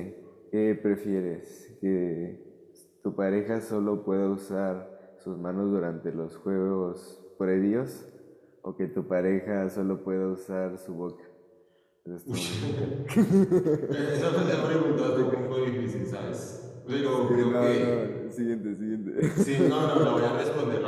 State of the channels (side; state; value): both; identical; correlation 1.00